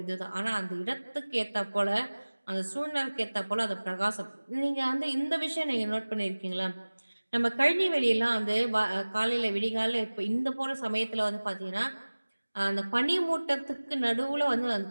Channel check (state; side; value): inverted; both; correlation -1.00